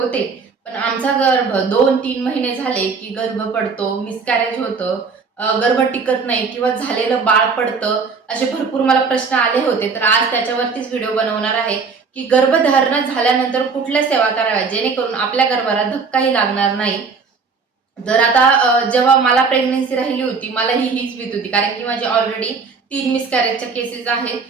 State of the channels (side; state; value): left; quieter; 5.0 dB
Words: पण आमचा गर्भ 2-3 महिने झाले की गर्भ पडतो, मिसकॅरेज होतं, गर्भ टिकत नाही किंवा झालेलं बाळ पडतं. असे भरपूर मला प्रश्न आले होते. तर आज त्याच्यावरतीच व्हिडिओ बनवणार आहे की गर्भधारणा झाल्यानंतर कुठल्या सेवा कराव्या जेणेकरून आपल्या गर्भाला धक्काही लागणार नाही. तर आता जेव्हा मला प्रेग्नन्सी राहिली होती, मला हीच भीती होती, कारण की माझी ऑलरेडी 3 मिसकॅरेजच्या केसेस आहेत.